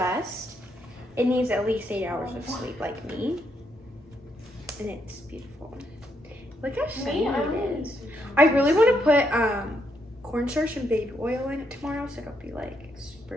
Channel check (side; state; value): both; normal; correlation 0.77